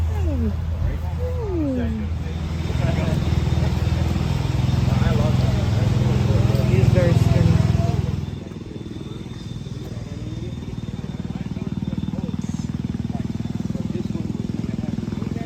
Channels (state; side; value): identical; both; correlation 1.00